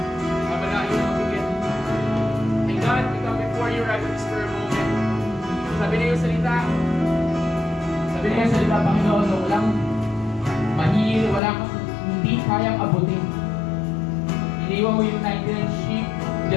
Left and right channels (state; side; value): drops out; right; at 11.4 s